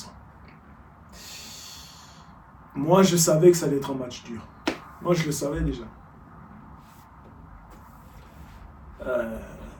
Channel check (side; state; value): both; identical; correlation 1.00